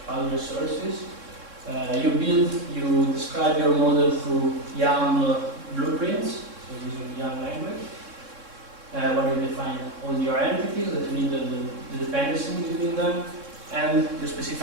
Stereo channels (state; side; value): late; left; 3.6 ms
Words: cloud resources. You describe your model through YAML blueprints, so using YAML language, where you define all your entities that you need the dependency between them, and you